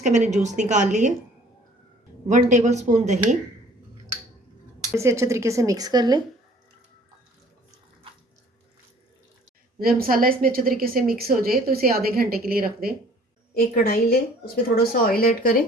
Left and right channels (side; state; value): both; normal; correlation 0.54